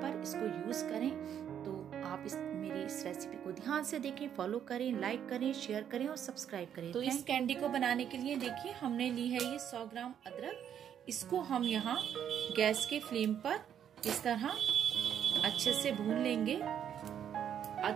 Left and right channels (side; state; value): left; quieter; 9.2 dB